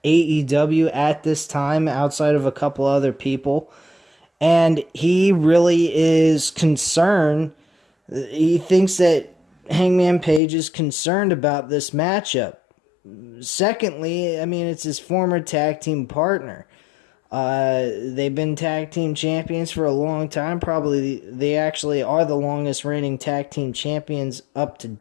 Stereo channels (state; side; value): drops out; right; at 10.4 s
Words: AEW at this time, outside of a couple other people. And he really is concerned. He thinks that Hangman Page is concerned about this matchup. Secondly, I mean, it's his former tag team partner. They've been tag team champions for a long time. Probably they actually are the longest reigning tag team champions up to